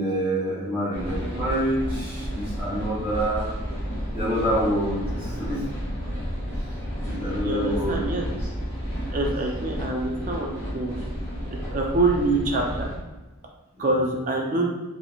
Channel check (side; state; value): both; normal; correlation 0.43